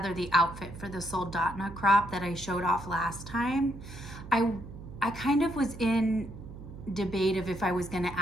the outfit for the soldotna crop that I showed off last time. I kind of was in debate of if I was going to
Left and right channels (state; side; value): noise; right; hum, 13 dB below the sound